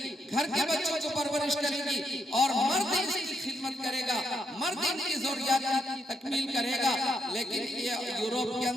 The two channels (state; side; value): normal; both; correlation 0.77